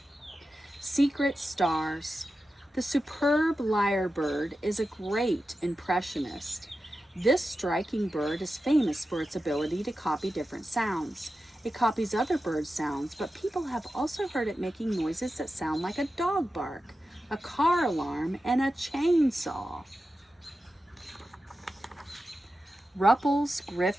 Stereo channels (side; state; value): both; normal; correlation 0.92